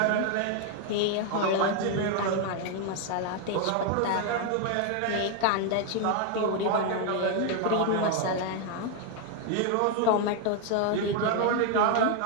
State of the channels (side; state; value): both; different; correlation 0.01